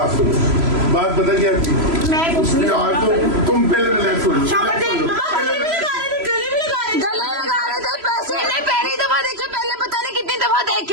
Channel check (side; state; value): left; late; 3.0 ms